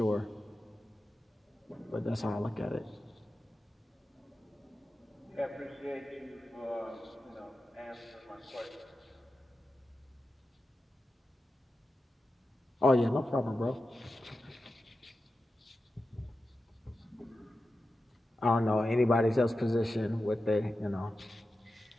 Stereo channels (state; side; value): normal; both; correlation 0.92